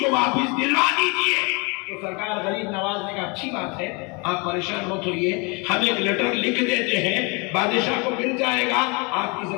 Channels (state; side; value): quieter; right; 30.4 dB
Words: واپس دلوا دیجیے۔ تو سرکار غریب نواز نے کہا اچھی بات ہے، آپ پریشان مت ہوئیے، ہم ایک لیٹر لکھ دیتے ہیں، بادشاہ کو مل جائے گا، آپ کی